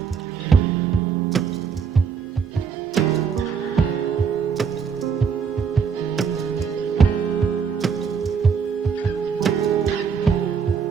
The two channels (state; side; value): quieter; left; 6.3 dB